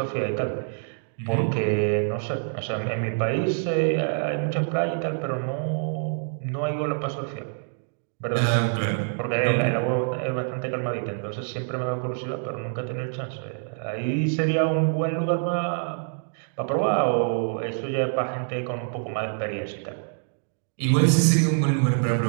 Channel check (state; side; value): silent; left; digital silence